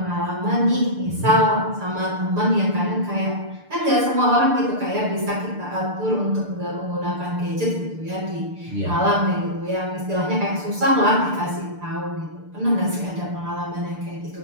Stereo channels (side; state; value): left; late; 6.7 ms